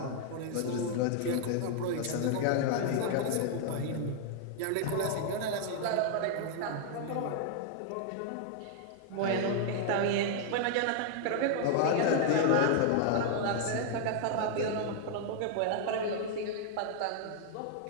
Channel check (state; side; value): different; both; correlation 0.00